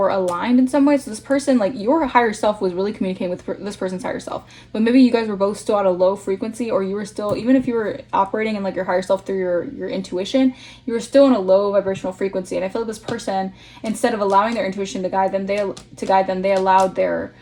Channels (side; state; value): both; identical; correlation 1.00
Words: aligned in some way. So this person, like your higher self was really communicating with this person's higher self, but maybe you guys were both still at a low frequency, or you were still, even if you were operating in like your higher self through your intuition, you were still in a low vibrational frequency. And I feel like this person, instead of allowing their intuition to guide them, they allowed their